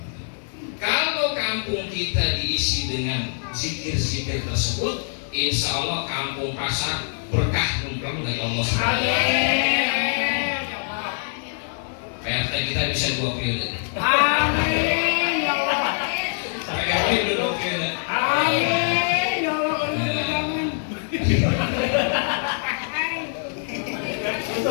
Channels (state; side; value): silent; right; digital silence